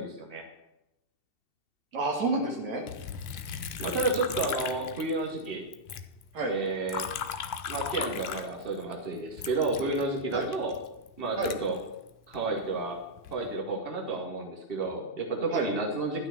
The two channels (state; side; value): late; right; 2.7 ms